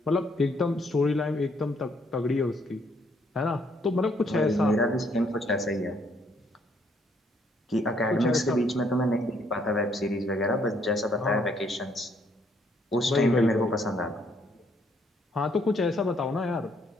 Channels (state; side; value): normal; both; correlation 0.69